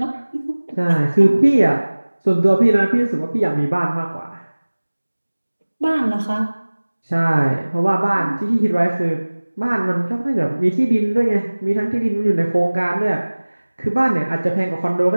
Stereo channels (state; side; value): inverted; both; correlation -1.00